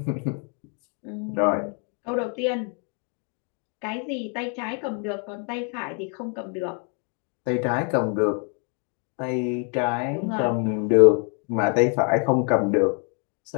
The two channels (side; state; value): right; quieter; 39.2 dB